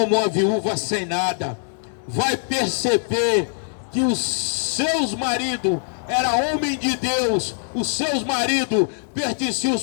uma viúva sem nada, vai perceber que os seus maridos eram homem de Deus, os seus maridos pertenciam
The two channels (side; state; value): right; silent; 64 dB below the other